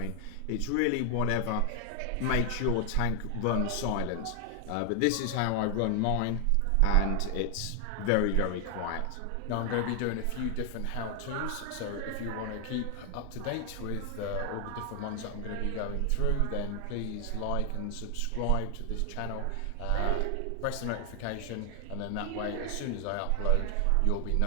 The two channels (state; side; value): different; both; correlation 0.00